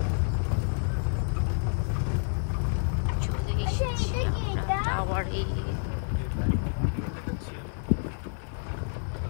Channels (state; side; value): silent; right; digital silence